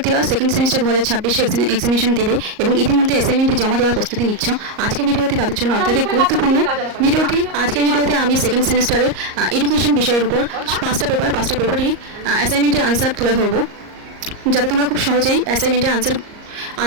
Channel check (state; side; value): late; left; 38 ms